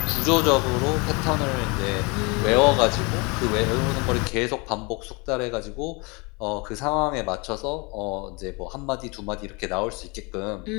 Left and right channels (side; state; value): right; quieter; 28.8 dB